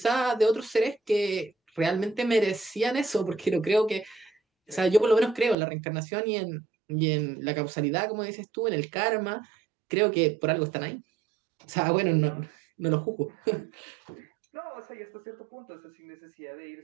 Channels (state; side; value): drops out; left; at 5.6 s